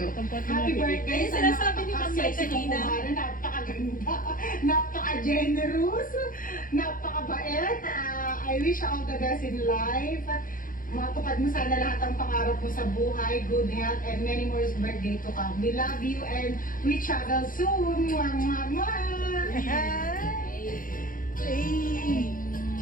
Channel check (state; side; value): late; right; 0.40 ms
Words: Ayun, sinasabi ni Ma'am May kanina. Napakaganda, napaka-generous, napakabait. I wish all the best in life. Matupad mo sana lahat ng pangarap mo sa buhay, good health, and many more birthday to come. We love you and we travel soon. Mwah, mwah, mwah. Eh!